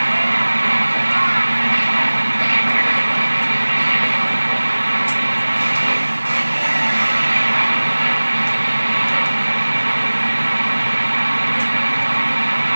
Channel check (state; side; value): inverted; both; correlation -1.00